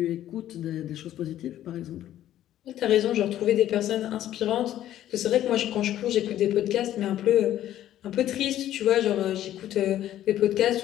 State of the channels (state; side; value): quieter; right; 12.5 dB